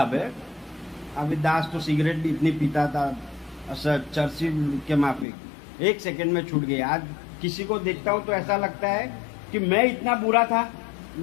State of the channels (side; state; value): right; drops out; at 5.2 s